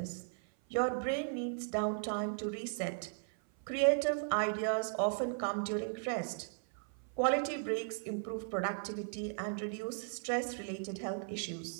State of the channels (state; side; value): silent; left; 53 dB below the other